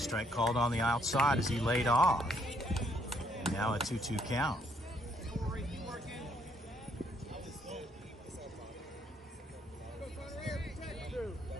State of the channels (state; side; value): normal; both; correlation 0.69